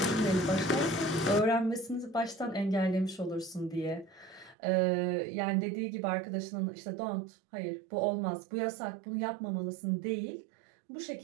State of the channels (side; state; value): left; drops out; at 4.5 s